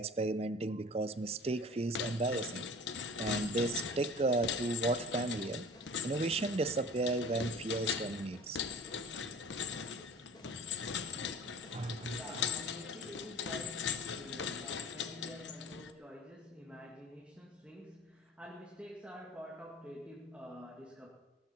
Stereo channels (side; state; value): both; normal; correlation 0.43